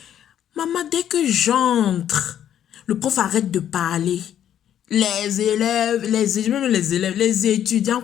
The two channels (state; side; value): quieter; right; 10.3 dB